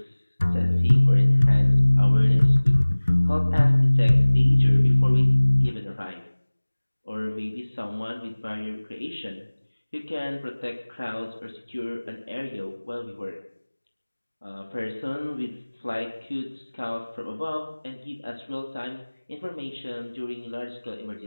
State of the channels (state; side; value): inverted; both; correlation -1.00